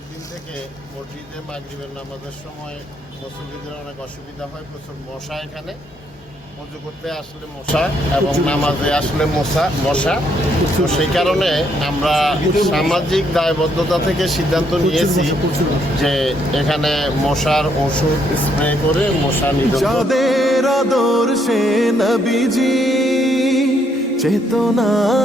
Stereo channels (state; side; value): normal; both; correlation 0.72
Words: থেকে মসজিদে মাগরিবের নামাজের সময় মুসল্লিদের অনেক অসুবিধা হয়, প্রচুর মশা। এখানে পুজো করতে আসলে মশা এবং নামাজে আসলে মশা। তো সেই কারণে আমরা সামাজিক দায়বদ্ধতা থেকে সিদ্ধান্ত নিয়েছি যে এখানে মশার ওষুধ স্প্রে করে মশা নিধন। যাদের আদর্শে নবীজি চেতনা